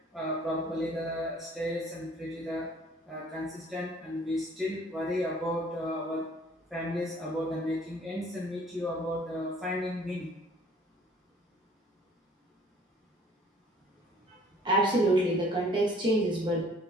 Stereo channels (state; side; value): normal; both; correlation 0.55